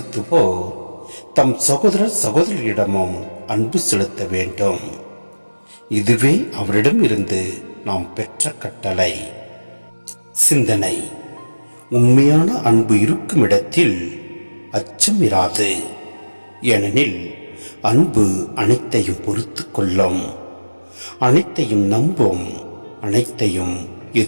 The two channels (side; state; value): both; inverted; correlation -1.00